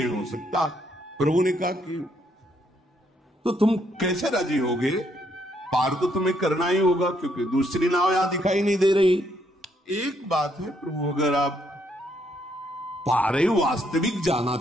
हो सकता। प्रभु ने कहा कि तो तुम कैसे राजी होगे? पार तो तुम्हें करना ही होगा, क्योंकि दूसरी नाव यहां दिखाई नहीं दे रही। एक बात है प्रभु, अगर आप पारे वास्तविक जाना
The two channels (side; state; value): both; normal; correlation 0.72